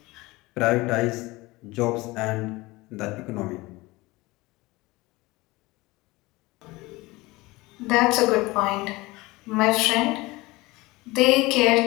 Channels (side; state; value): right; quieter; 21.5 dB